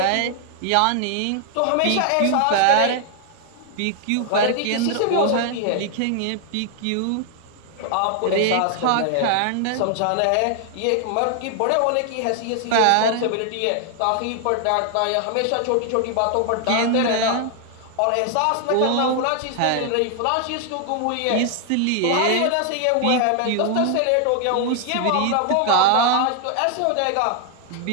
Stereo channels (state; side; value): different; both; correlation 0.00